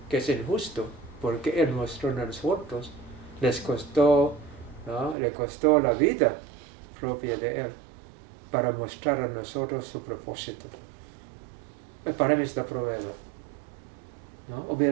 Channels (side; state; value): left; drops out; at 5.2 s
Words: que es injusto, porque Él mostró a nosotros, le costó la vida propia de Él, para mostrar a nosotros su propósito. Para mí es la prueba. ¿No?